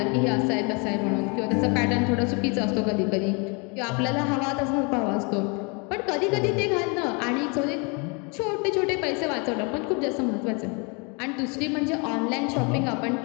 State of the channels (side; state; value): right; quieter; 32.7 dB